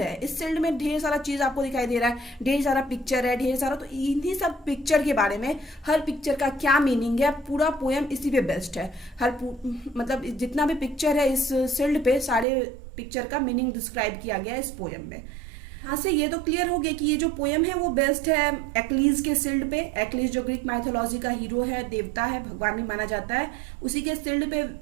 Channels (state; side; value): drops out; left; at 12.5 s